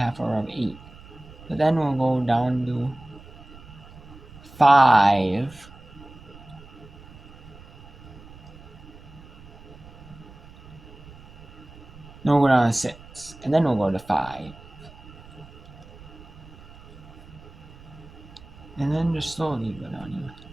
hour of 8. But then we'll go down to 5. Then we'll go down to 6, and then we'll go to 5. And then just slowly go down here.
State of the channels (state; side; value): noise; right; rumble, 19 dB below the sound